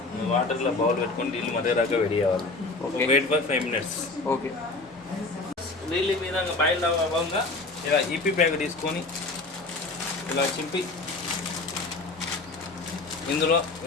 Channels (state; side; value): quieter; right; 3.4 dB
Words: వాటర్లో బౌల్ పెట్టుకొని నీళ్ళు మరిగేదాకా వేడి చేయాలి. Wait for 5 minutes. ఓకే. నీళ్ళు మీద బాయిల్ అవ్వగా ఇలా ఈపీ ప్యాకెట్ తీసుకొని ఇలా చింపి ఇందులో